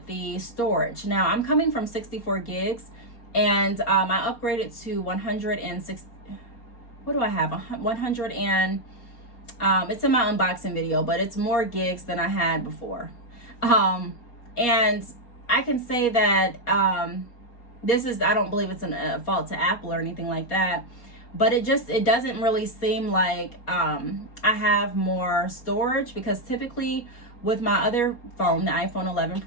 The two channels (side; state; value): right; late; 4.2 ms